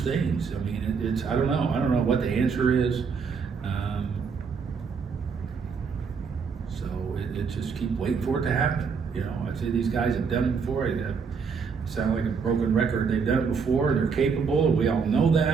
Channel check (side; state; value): left; quieter; 5.7 dB